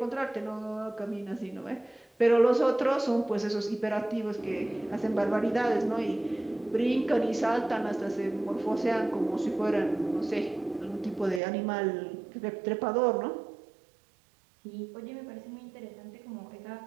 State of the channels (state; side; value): drops out; left; at 11.4 s